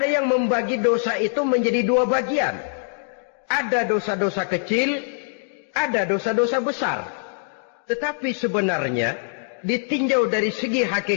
yang membagi dosa itu menjadi dua bagian. Ada dosa-dosa kecil, ada dosa-dosa besar. Tetapi sebenarnya ditinjau dari segi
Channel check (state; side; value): silent; right; digital silence